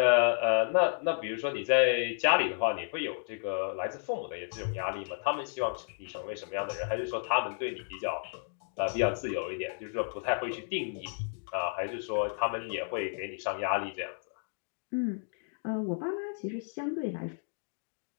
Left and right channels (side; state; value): right; silent; digital silence